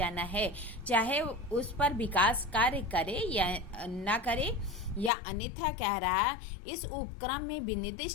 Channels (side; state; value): right; drops out; at 5.1 s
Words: है, चाहे उस पर विकास कार्य करे या न करे, या अन्यथा कह रहा है इस उपक्रम में